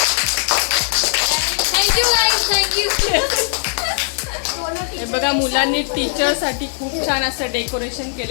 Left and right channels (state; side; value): silent; right; digital silence